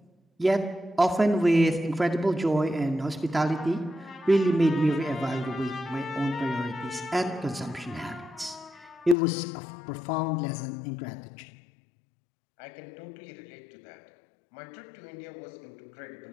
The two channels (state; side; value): drops out; right; at 9.2 s